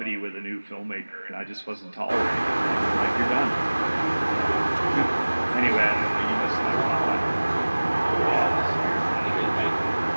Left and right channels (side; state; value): both; inverted; correlation -1.00